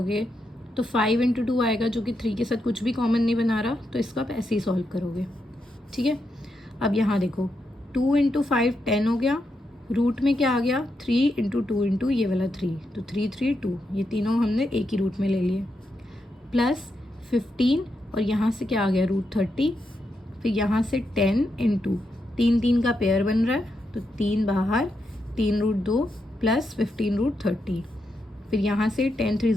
तो 5 इंटू 2 आएगा जो कि 3 के साथ कुछ भी कॉमन नहीं बना रहा, तो इसको आप ऐसे ही सॉल्व करोगे। ठीक है, अब यहाँ देखो 2 इंटू 5 10 हो गया, रूट में क्या आ गया 3 इंटू 2 इंटू ये वाला 3, तो 3 3 2, ये तीनों हमने एक ही रूट में ले लिए, प्लस 15 और यहाँ से क्या आ गया रूट 30, फिर यहाँ से 10 इंटू 3 3 का पेयर बन रहा है, तो 3 बाहर, 3 रूट 2 प्लस 15 रूट 30, फिर यहाँ से 10 3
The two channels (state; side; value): normal; both; correlation 0.84